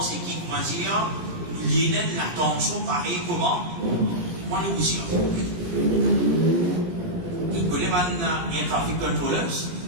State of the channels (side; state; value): left; late; 18 ms